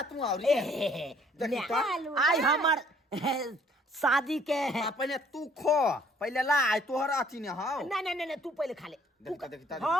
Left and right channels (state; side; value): normal; both; correlation 0.59